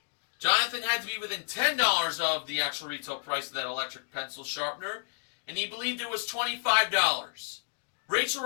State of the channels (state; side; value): silent; right; digital silence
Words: Jonathan had to be within $10 of the actual retail price of that electric pencil sharpener, and he believed it was $25. Rachel